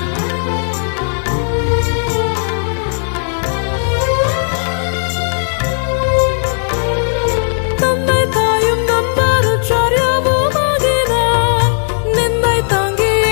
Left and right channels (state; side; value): silent; right; digital silence